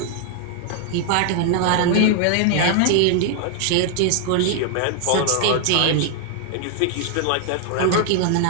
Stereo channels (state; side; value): different; both; correlation 0.00